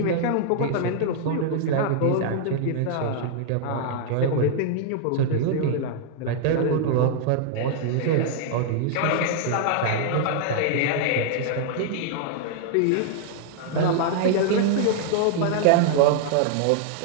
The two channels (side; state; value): both; different; correlation -0.01